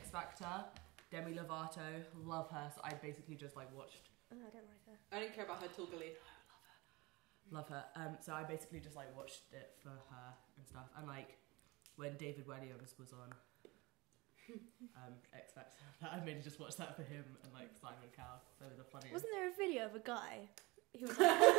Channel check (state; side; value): quieter; left; 23.8 dB